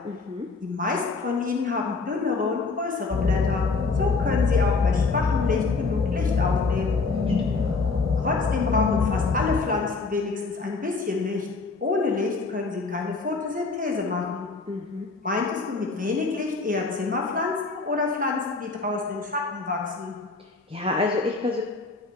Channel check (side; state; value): right; quieter; 4.1 dB